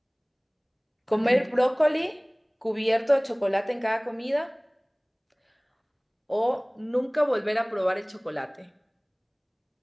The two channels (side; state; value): both; identical; correlation 1.00